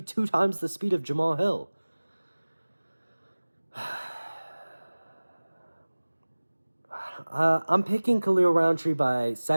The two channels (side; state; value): both; inverted; correlation -1.00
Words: 2 times the speed of Jamal Hill. I'm picking Khalil Roundtree by